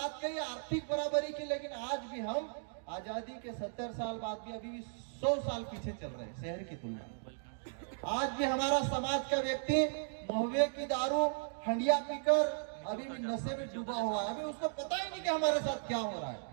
कही, आर्थिक बराबरी की, लेकिन आज भी हम आजादी के 70 साल बाद भी अभी भी 100 साल पीछे चल रहे हैं शहर की तुलना में। आज भी हमारा समाज का व्यक्ति महुए की दारू हंडिया पीकर अभी भी नशे में डूबा हुआ है। अभी उसको पता ही नहीं कि हमारे साथ क्या हो रहा है।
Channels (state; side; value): silent; left; digital silence